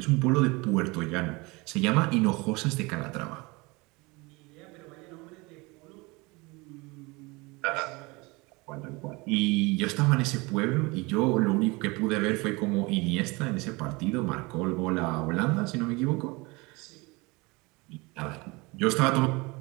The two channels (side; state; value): left; quieter; 25.2 dB